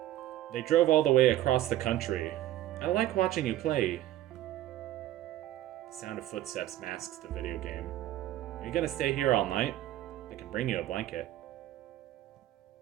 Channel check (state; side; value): quieter; left; 13.9 dB